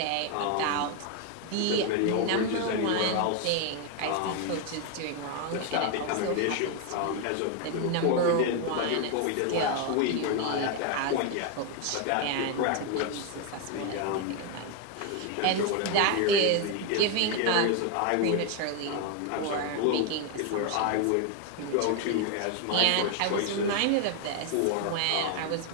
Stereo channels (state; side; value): different; both; correlation 0.01